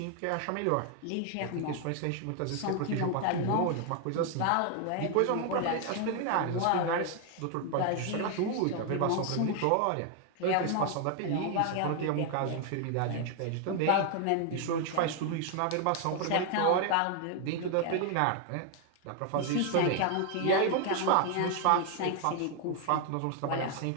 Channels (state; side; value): different; both; correlation 0.00